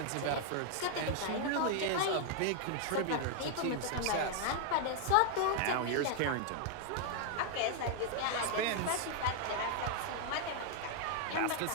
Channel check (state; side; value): different; both; correlation 0.00